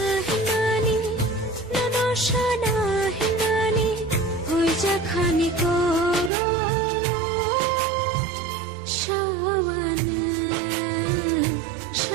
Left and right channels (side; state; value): left; drops out; at 6.3 s